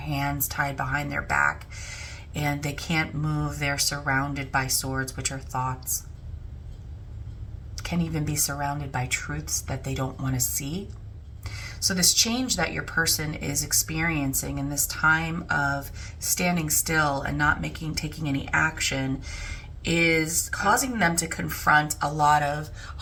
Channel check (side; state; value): both; identical; correlation 1.00